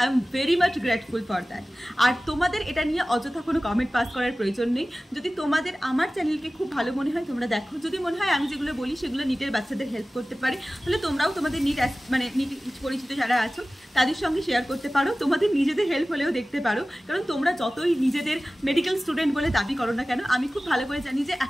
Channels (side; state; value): both; normal; correlation 0.97